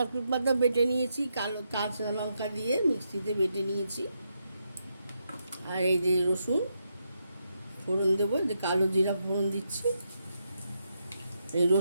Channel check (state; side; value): inverted; both; correlation -0.81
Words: পাতা বেটে নিয়েছি, কালো কাঁচা লঙ্কা দিয়ে মিক্সিতে বেটে নিয়েছি। আর এই যে রসুন ফোড়ন দেবো, যে কালো জিরা ফোড়ন দিচ্ছি, এই